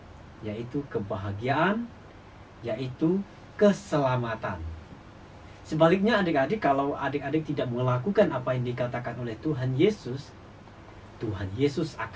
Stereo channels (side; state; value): both; identical; correlation 1.00